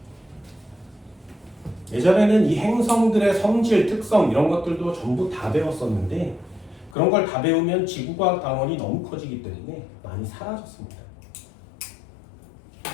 예전에는 이 행성들의 성질, 특성 이런 것들도 전부 다 배웠었는데 그런 걸 다 배우면 지구과학 단원이 너무 커지기 때문에 많이 사라졌습니다.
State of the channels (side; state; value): right; drops out; at 7.0 s